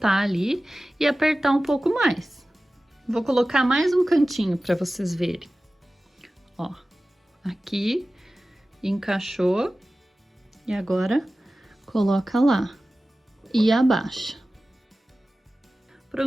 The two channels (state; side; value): normal; both; correlation 0.96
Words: ali e apertar um pouco mais. Vou colocar mais um cantinho para vocês verem. Ó, aqui encaixou e agora coloca lá e abaixa.